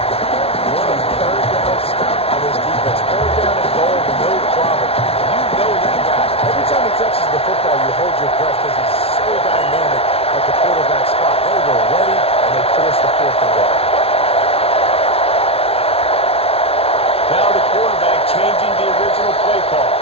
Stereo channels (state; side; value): late; right; 0.28 ms